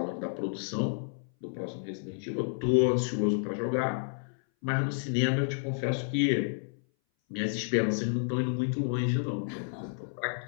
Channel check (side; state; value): right; silent; 57 dB below the other